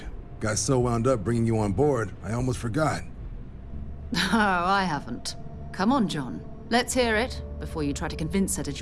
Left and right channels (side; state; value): both; identical; correlation 1.00